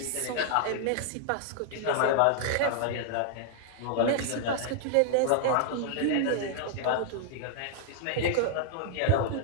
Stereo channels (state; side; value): different; both; correlation -0.01